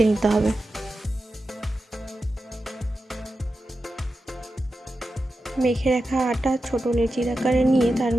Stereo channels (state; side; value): normal; both; correlation 0.91